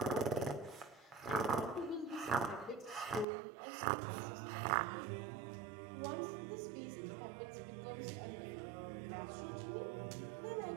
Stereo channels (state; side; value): drops out; left; at 3.2 s